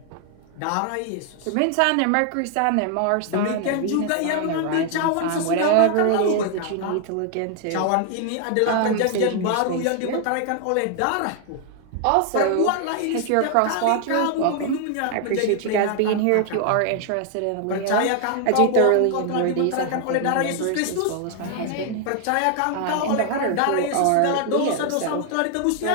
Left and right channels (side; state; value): both; different; correlation 0.00